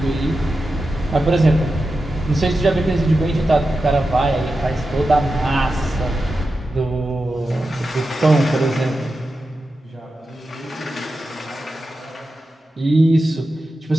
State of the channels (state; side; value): normal; both; correlation 0.91